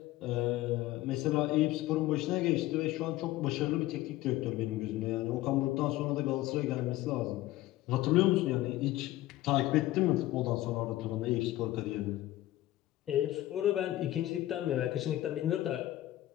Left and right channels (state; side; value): quieter; right; 15.9 dB